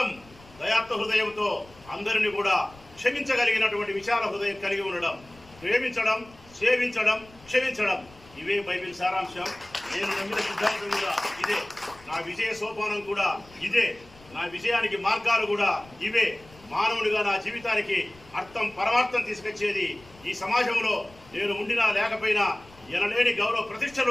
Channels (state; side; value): noise; left; rumble, 24 dB below the sound